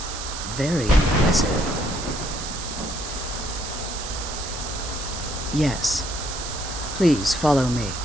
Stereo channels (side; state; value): right; noise; hiss, 8 dB below the sound